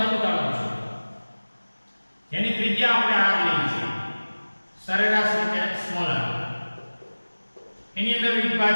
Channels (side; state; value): both; inverted; correlation -1.00